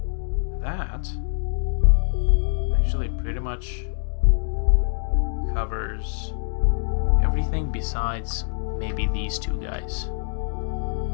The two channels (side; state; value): right; silent; digital silence